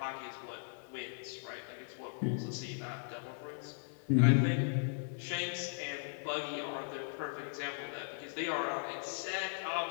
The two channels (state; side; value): silent; right; digital silence